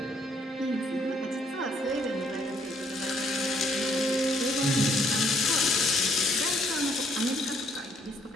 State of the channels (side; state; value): both; normal; correlation 0.68